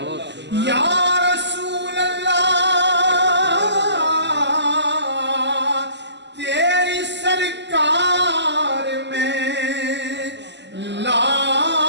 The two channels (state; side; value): late; left; 0.51 ms